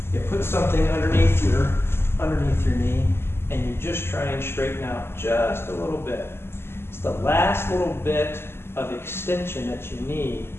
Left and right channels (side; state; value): right; late; 0.12 ms